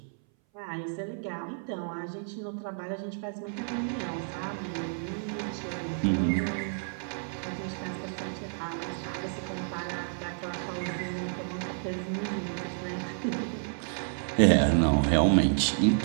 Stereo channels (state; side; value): silent; left; 58 dB below the other